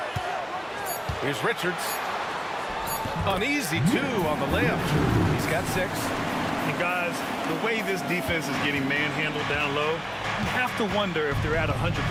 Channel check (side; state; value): both; identical; correlation 1.00